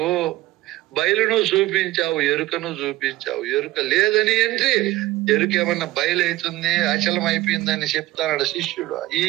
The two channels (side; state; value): left; quieter; 17.5 dB